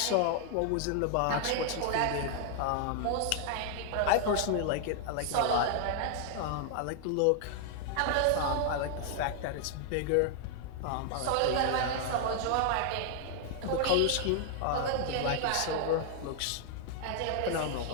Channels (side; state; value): both; different; correlation 0.00